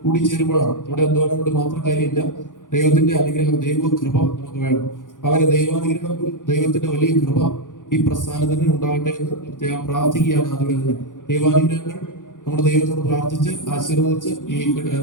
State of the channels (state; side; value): late; right; 0.88 ms